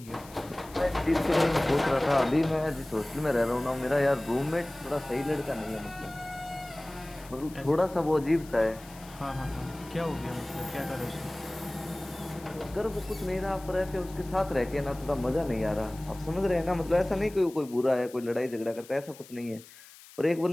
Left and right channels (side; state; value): left; noise; hiss, 20 dB below the sound